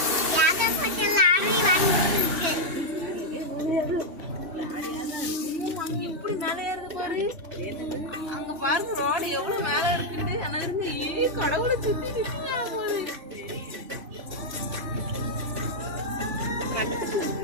எப்படி மேலே ஏறுது பாரு. அங்க பாருங்க ரோடு எவ்வளவு மேல இருக்குது. ஆனா இருந்து கடவுளை சுத்தி நிற்கிறாங்க போது.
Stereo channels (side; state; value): left; late; 3.1 ms